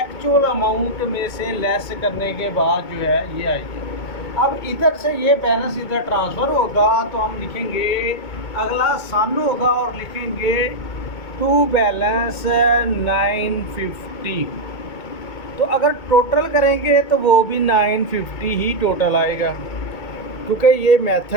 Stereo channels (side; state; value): right; late; 2.2 ms